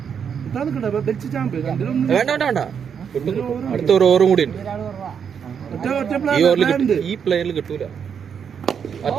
വേണ്ട അടുത്ത ഒരു ഓവറും കൂടി ഉണ്ട്. ഈ ഓവറിൽ ഈ പ്ലെയറിൽ കിട്ടൂല.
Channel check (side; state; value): left; quieter; 7.3 dB